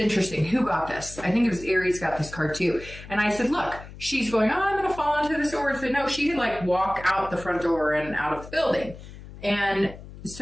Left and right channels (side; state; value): left; noise; hum, 15 dB below the sound